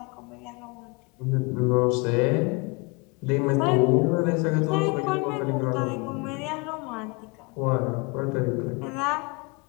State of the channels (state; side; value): quieter; right; 29.1 dB